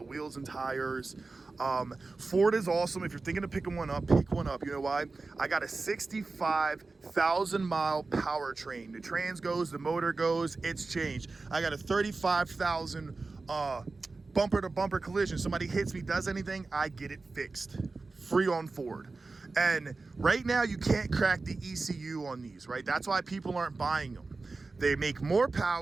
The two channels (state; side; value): quieter; left; 3.7 dB